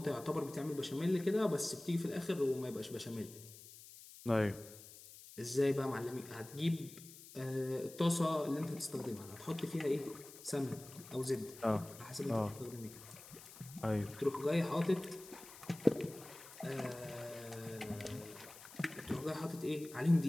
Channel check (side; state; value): left; noise; hiss, 17 dB below the sound